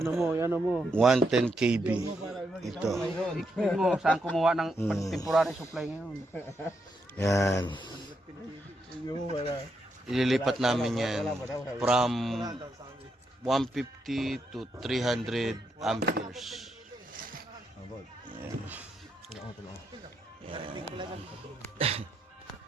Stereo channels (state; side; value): normal; both; correlation 0.80